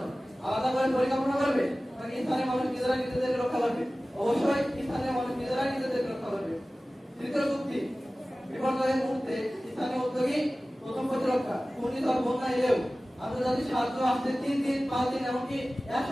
আলাদা করে পরিকল্পনা করবে নাকি স্থানীয় মানুষ নিজেরা নিজেদের রক্ষা করবে? অবশ্যই স্থানীয় মানুষ নিজেরাই নিজেদের রক্ষা করবে। তৃতীয় চুক্তি, বিপর্যয়ের মুহূর্তে স্থানীয় উদ্যোগী প্রথম প্রতিরক্ষা। ঘূর্ণিঝড়, বন্যা এলেও আন্তর্জাতিক সাহায্য আসতে 3 দিন 5 দিন এমনকি 1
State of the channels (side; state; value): both; normal; correlation 0.97